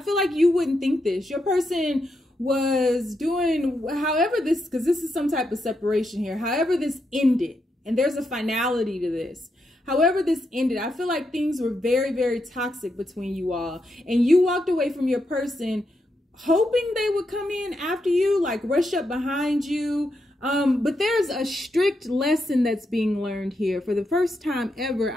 like you wouldn't think this. Your person was doing, however this, because this is some type of separation here, however this ended, and there's a finality to this. However this ended, I feel like things were very, very toxic between you all. And you walked away from your person hoping they would come in after you, like rush up behind you. But there's a strict lesson that's being learned here. For the first time ever,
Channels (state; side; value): normal; both; correlation 0.83